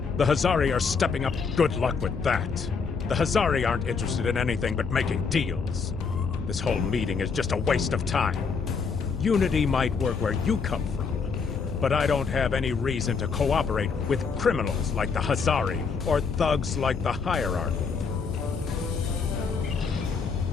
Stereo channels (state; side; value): quieter; right; 5.3 dB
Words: The Hazari are stepping up. Good luck with that. The Hazari aren't interested in anything but making deals. This whole meeting is just a waste of time. Unity might work where you come from, but I don't have any reason to cooperate with criminals like the Hazari or thugs like the hierarchy.